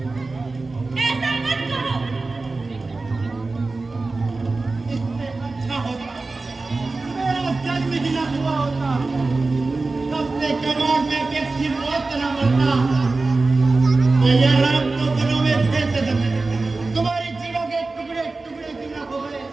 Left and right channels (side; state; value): left; quieter; 3.6 dB